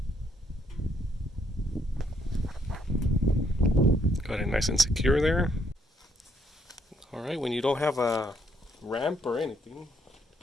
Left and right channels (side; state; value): both; normal; correlation 0.70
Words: Got it nice and secure there. Alright, when you don't have a ramp or anything,